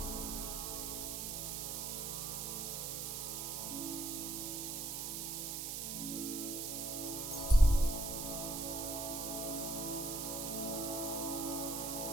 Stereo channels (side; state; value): right; noise; hiss, 3 dB below the sound